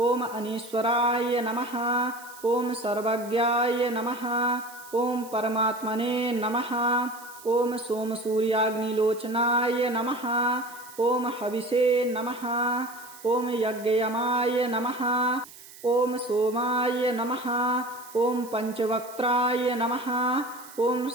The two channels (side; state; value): right; noise; hiss, 19 dB below the sound